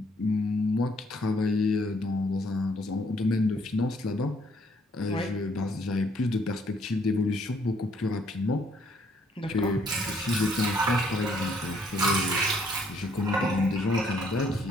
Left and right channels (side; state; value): both; normal; correlation 0.67